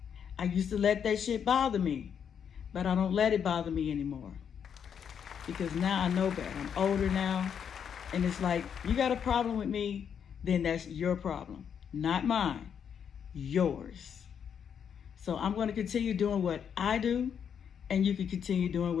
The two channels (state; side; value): quieter; right; 7.8 dB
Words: I used to let that shit bother me, but I don't let it bother me anymore. Because now I know better. I'm older now, and it's like, you got a problem with me, then that's your problem, not mine, yours. So I'm going to continue doing what I do, and you can continue doing